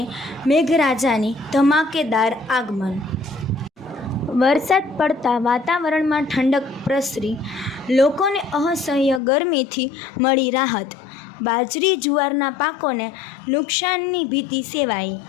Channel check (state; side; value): drops out; right; at 9.2 s